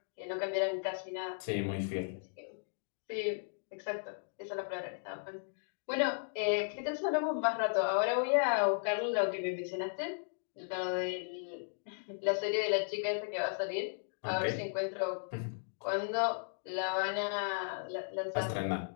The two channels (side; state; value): right; silent; digital silence